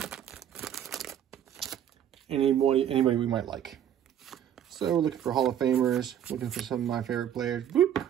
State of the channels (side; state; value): left; quieter; 10.1 dB